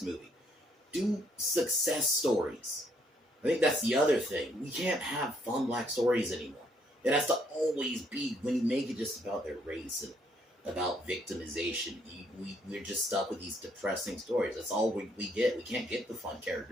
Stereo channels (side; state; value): both; normal; correlation 0.70